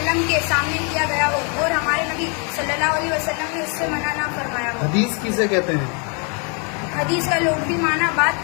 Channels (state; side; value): quieter; right; 36.8 dB